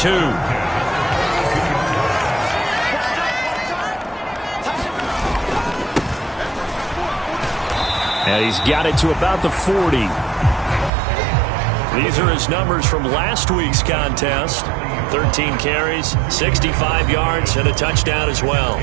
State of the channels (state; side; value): drops out; left; at 10.9 s